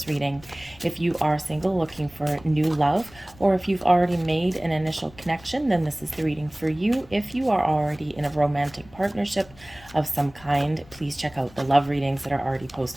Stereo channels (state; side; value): noise; left; rumble, 23 dB below the sound